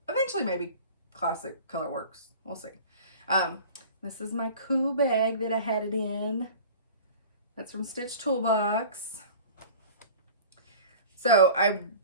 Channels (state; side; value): inverted; both; correlation -0.41